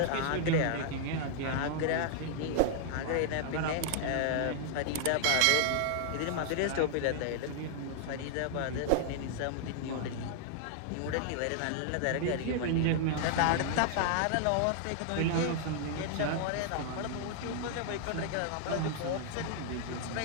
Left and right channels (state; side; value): different; both; correlation -0.01